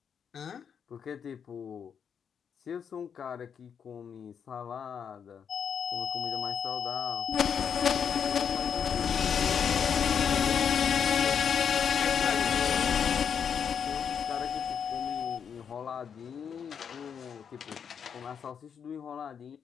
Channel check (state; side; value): quieter; right; 7.4 dB